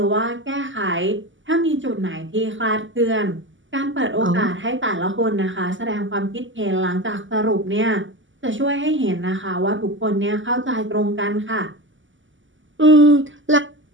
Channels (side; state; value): left; late; 0.55 ms